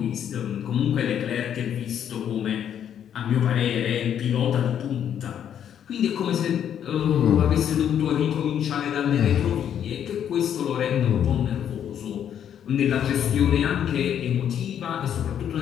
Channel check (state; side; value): quieter; right; 9.4 dB